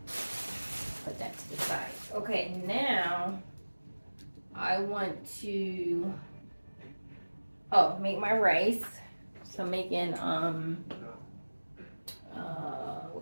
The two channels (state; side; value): inverted; both; correlation -1.00